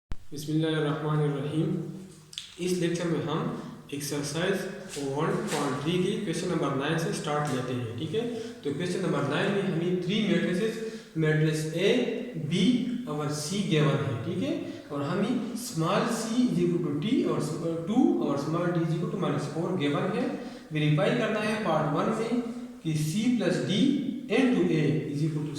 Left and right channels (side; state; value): both; identical; correlation 1.00